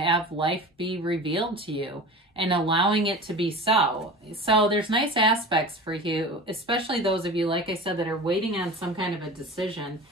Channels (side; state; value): both; normal; correlation 0.35